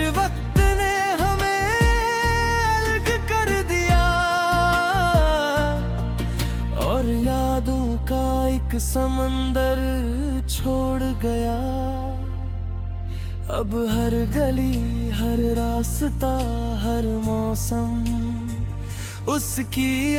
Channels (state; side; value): identical; both; correlation 1.00